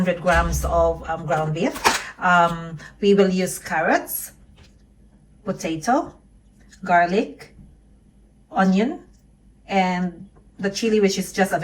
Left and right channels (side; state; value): both; identical; correlation 1.00